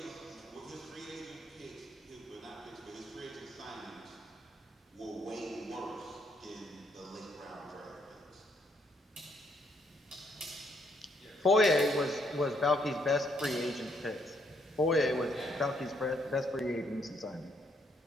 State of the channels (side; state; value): both; normal; correlation 0.72